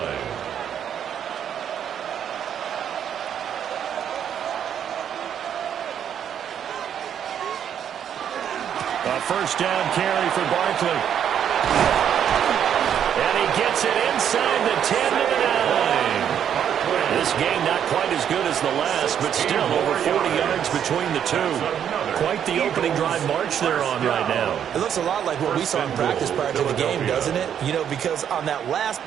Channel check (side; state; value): left; quieter; 9.0 dB